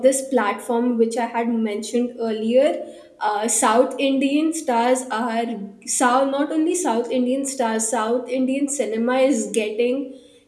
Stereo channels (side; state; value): both; identical; correlation 1.00